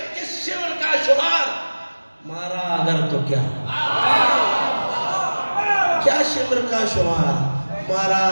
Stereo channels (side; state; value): both; inverted; correlation -1.00